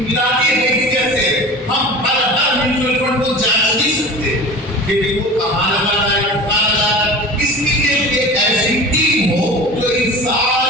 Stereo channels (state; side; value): normal; both; correlation 0.36